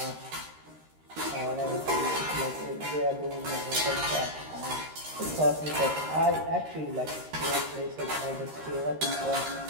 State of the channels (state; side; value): late; left; 13 ms